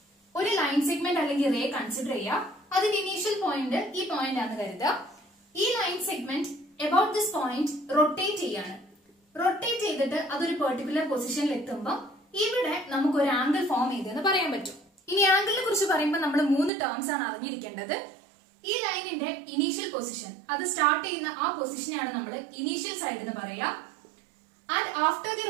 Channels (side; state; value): left; drops out; at 16.7 s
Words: ഒരു ലൈൻ സെഗ്മെന്റ് അല്ലെങ്കിൽ റേ കൺസിഡർ ചെയ്യുക. അതിന്റെ ഇനീഷ്യൽ പോയിന്റ് ഈ പോയിന്റ് ആണെന്ന് കരുതുക. ഈ line segment about this point rotate ചെയ്യാണ്. റൊട്ടേറ്റ് ചെയ്തിട്ട് അതൊരു പെർട്ടിക്കുലർ പൊസിഷനിൽ എത്തുമ്പോൾ ഇവിടെ നമുക്ക് ഒരു ആംഗിൾ ഫോം ചെയ്തെന്ന് പറയാൻ പറ്റും. ഇനി ആംഗിളിനെ കുറിച്ച് പറയുമ്പോൾ നമ്മൾ 3 ടേംസ് ആണ് അറിഞ്ഞിരിക്കേണ്ടത്. ഈ ലൈനിന്റെ ഇനീഷ്യൽ പൊസിഷൻ, അത് സ്റ്റാർട്ട് ചെയ്യുന്ന ആ പൊസിഷനെയാണ് നമ്മൾ ഇനീഷ്യൽ സൈഡ് എന്ന് പറയുക. And after the